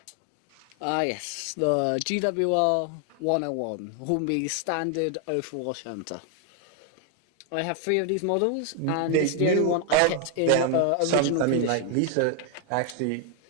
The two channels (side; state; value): both; different; correlation 0.00